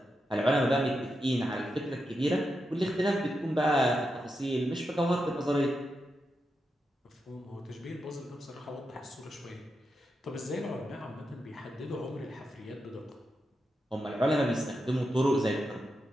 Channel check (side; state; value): both; normal; correlation 0.86